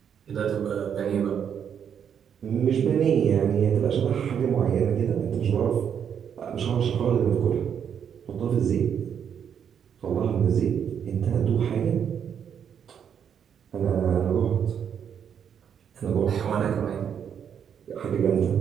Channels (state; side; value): quieter; left; 8.1 dB